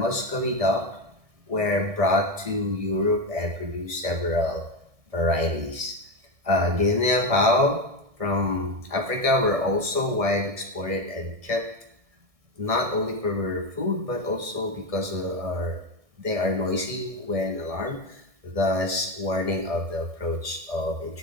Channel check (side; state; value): left; late; 1.7 ms